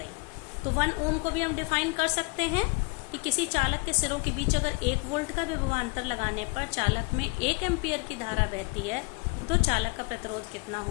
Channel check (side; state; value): right; quieter; 29.2 dB